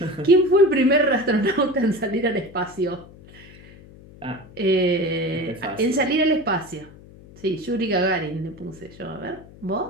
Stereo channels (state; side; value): noise; left; hum, 21 dB below the sound